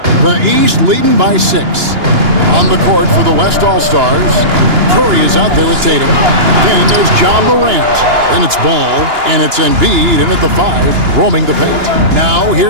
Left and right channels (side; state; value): left; late; 2.9 ms